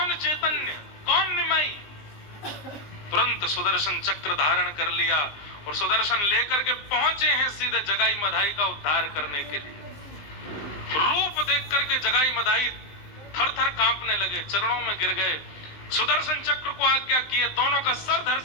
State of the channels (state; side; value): late; right; 19 ms